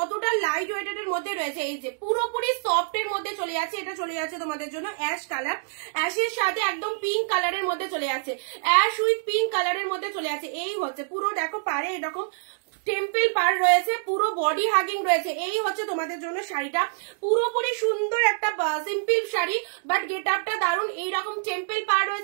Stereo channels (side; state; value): left; silent; digital silence